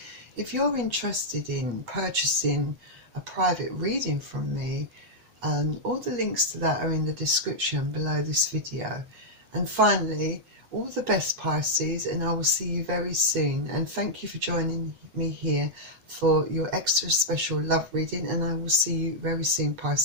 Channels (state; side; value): late; left; 8.0 ms